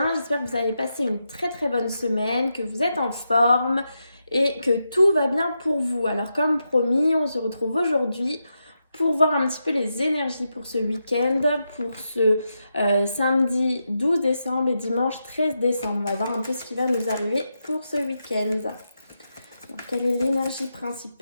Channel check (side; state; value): both; inverted; correlation -0.86